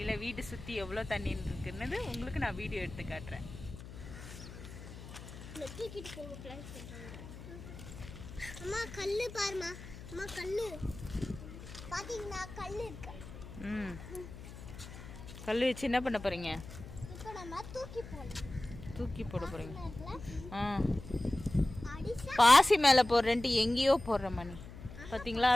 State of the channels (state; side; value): noise; left; hum, 13 dB below the sound